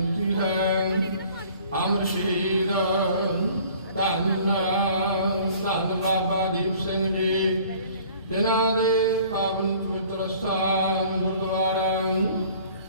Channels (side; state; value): both; inverted; correlation -0.51